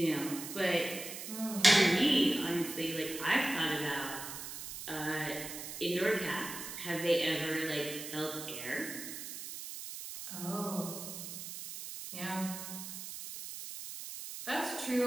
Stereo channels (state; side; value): noise; right; hiss, 8 dB below the sound